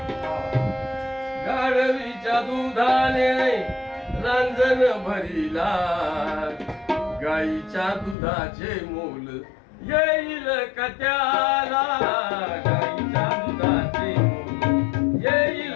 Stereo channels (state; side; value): drops out; right; at 8.2 s